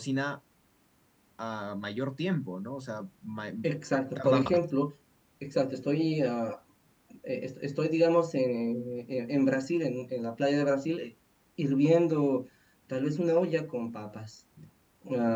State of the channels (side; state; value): both; identical; correlation 1.00